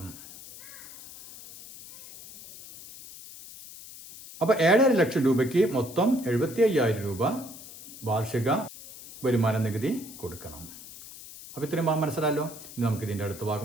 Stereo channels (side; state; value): left; noise; hiss, 16 dB below the sound